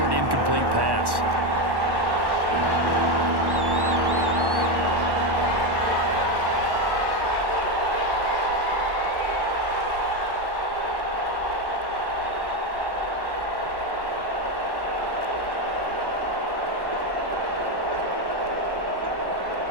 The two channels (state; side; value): late; left; 1.1 ms